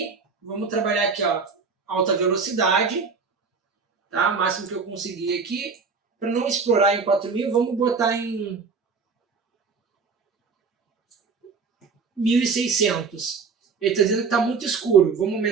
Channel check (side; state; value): left; quieter; 5.0 dB